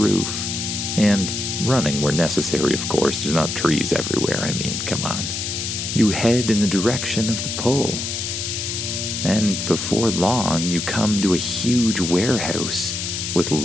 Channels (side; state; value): left; noise; hiss, 3 dB below the sound